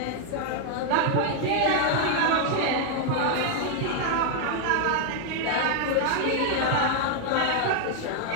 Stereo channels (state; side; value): different; both; correlation 0.00